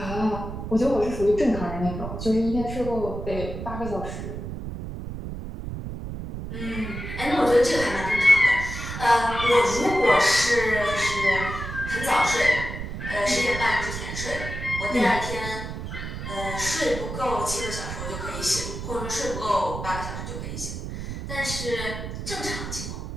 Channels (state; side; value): noise; right; rumble, 7 dB below the sound